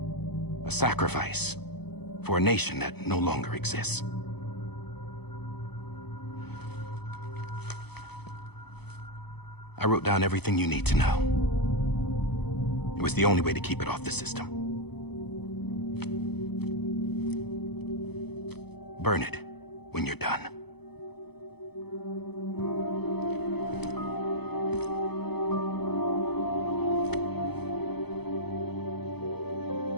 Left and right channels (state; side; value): late; right; 0.98 ms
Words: A sacrifice for a nation that no longer exists. I wrote down everything you need to know. It was the only way to keep it off the system. Burn it when you're done.